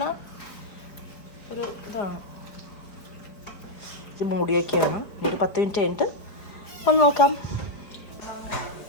ഒരു ഇതാണ്. ഇത് മൂടി വയ്ക്കുകയാണ്. ഒരു 10 മിനിറ്റ് കഴിഞ്ഞിട്ട് ഒന്ന് നോക്കാം.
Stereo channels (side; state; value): right; late; 5.0 ms